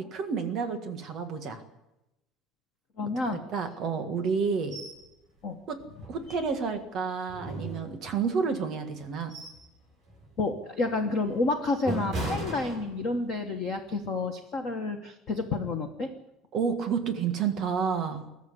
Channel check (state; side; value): normal; both; correlation 0.43